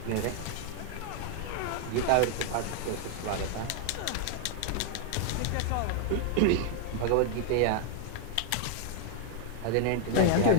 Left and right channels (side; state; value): both; different; correlation 0.00